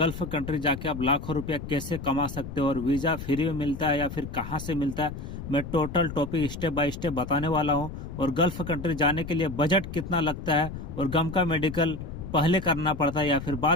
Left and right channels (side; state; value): left; noise; rumble, 9 dB below the sound